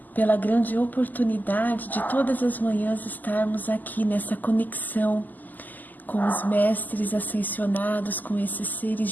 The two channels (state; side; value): late; right; 0.084 ms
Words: pela grande oportunidade de todas as manhãs estarmos aqui nessa conexão com os mestres ascensionados, com esses seres